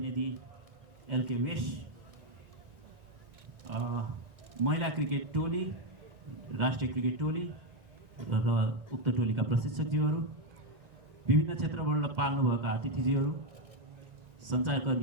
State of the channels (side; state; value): left; late; 1.9 ms